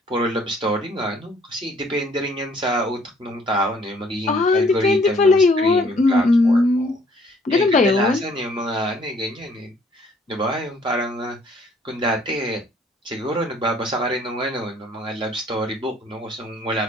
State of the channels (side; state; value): both; normal; correlation 0.61